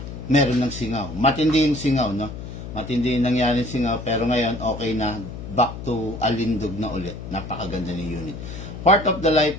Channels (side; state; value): left; noise; hum, 10 dB below the sound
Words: meron ng singaw. Matindi yung singaw, no? Matindi yung nangyari singaw. Pero ngayon, okay na. Back to alindog na ulit. Napakaganda ng unit. Part of the